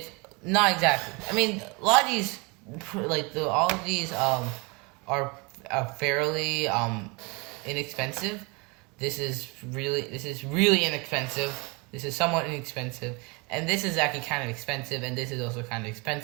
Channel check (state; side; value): quieter; left; 28.4 dB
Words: not exactly. I mean, a lot of these all of these are fairly inexpensive. This is really inexpensive. This is somewhat inexpensive. And this is actually kind of expensive, and this is also kind of